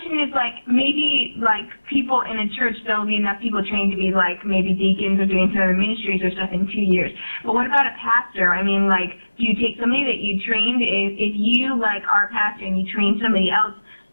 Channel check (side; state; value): both; inverted; correlation -1.00